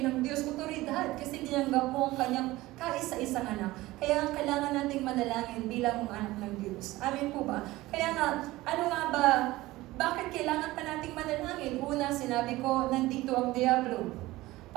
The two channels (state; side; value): quieter; left; 18.4 dB